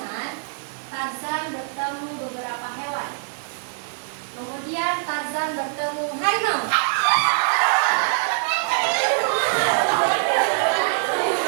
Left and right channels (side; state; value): left; silent; 59 dB below the other